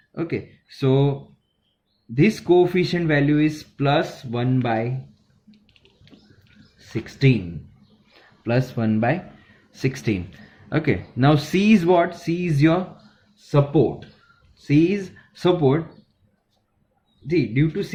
Okay, so this coefficient value is plus 1 by 16. Okay, now C is what? C is your support. see, due to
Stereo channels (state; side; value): identical; both; correlation 1.00